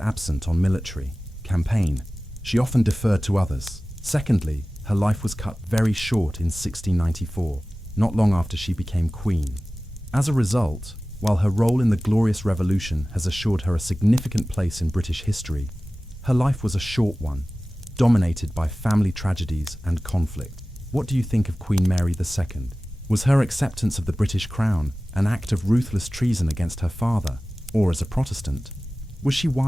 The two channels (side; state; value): both; normal; correlation 0.96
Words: on military campaign, she often deferred to others. Secondly, her life was cut very short in 1694, not long after she became queen. As a result, while her role in the Glorious Revolution has assured her a significant place in British history, her life was a short one, dominated by family tragedies and conflict. What do you think of Queen Mary II? Was her acceptance of the British crown an act of ruthless treason against her father, or as a Protestant? Was she